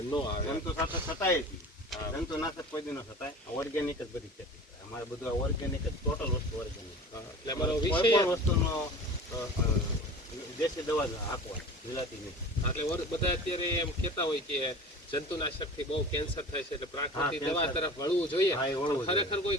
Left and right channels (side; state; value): both; normal; correlation 0.38